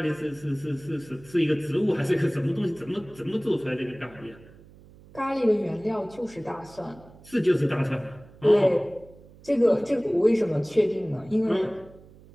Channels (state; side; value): noise; right; hum, 23 dB below the sound